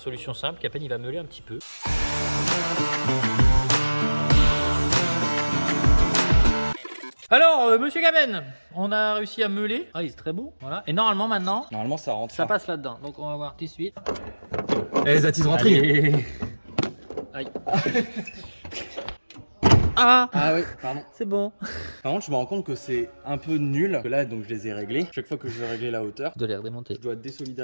simple, Capen il va meuler un petit peu. Alors, monsieur Capen, on a réussi à meuler. Ah, il est très beau. Voilà. Et normalement, maintenant, Normalement, ça rentre. ça passe là-dedans. Donc, on va voir tout de suite. Eh, that is rentré. Allez. Aïe. Ah, Ah oui, pardon. c'est bon. Par contre, je me rends compte que c'est un peu nul. Que là, donc, je les ai réglés. Chaque fois que je vais régler la hauteur, Je dois les redémonter. je dois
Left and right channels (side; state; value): both; inverted; correlation -1.00